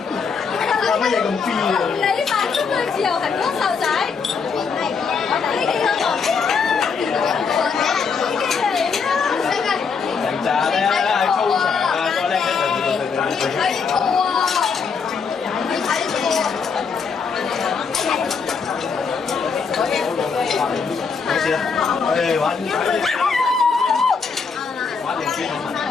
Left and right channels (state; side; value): quieter; right; 5.5 dB